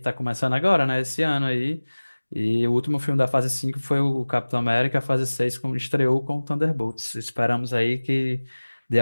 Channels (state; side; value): inverted; both; correlation -1.00